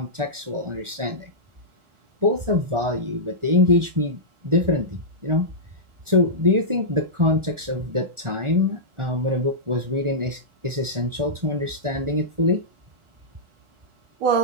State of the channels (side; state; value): left; late; 1.4 ms